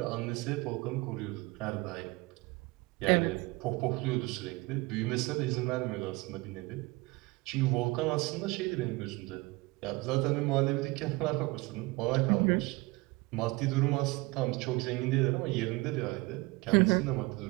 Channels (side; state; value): left; quieter; 23.6 dB